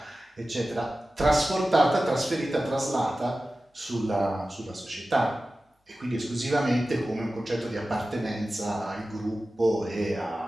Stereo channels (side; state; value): both; normal; correlation 0.95